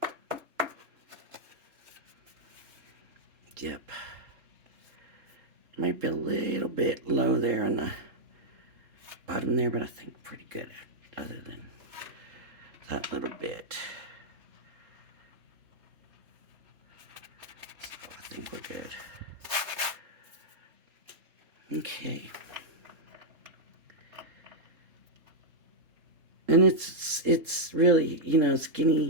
Yep. Might be a little bit low there on the bottom there, but I think pretty good other than that little bit. So I think we're good. Okay. And it's really, you know,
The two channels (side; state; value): left; late; 3.7 ms